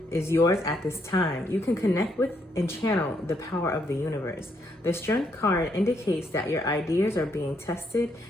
is yours at this time. You can connect with and channel the power of the universe. The strength card indicates that your ideas are being tested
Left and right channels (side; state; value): both; normal; correlation 0.74